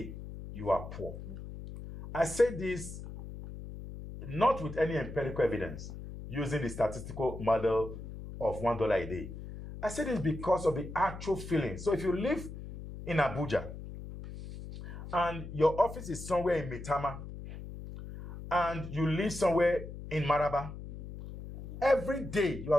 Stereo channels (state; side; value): noise; left; hum, 11 dB below the sound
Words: you are poor. I say this not with any empirical evidence, using the statistical model of $1 a day. I say this because of the actual feeling. So if you live in Abuja and your office is somewhere in Maitama and you live somewhere in Maraba, every day you